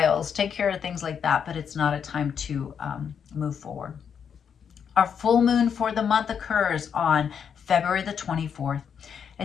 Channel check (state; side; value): quieter; right; 7.4 dB